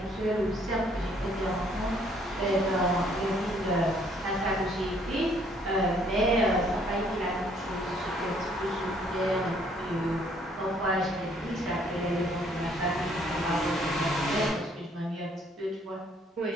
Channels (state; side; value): normal; both; correlation 0.64